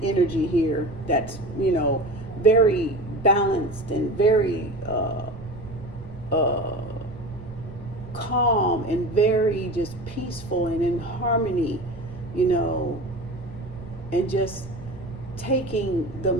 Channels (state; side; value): noise; right; rumble, 15 dB below the sound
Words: energy here that's, you know, very balanced and very calm and very just peaceful and in harmony, you know, and just taking the